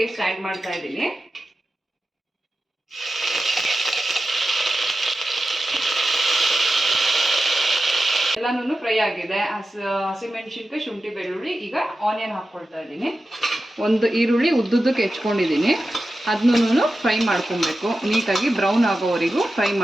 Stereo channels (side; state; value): both; normal; correlation 0.92